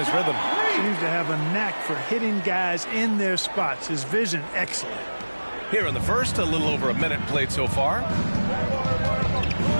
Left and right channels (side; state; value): both; inverted; correlation -1.00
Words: rhythm. Seems to have a knack for hitting guys in their spots. His vision, excellent. Here in the first, a little over a minute played so far.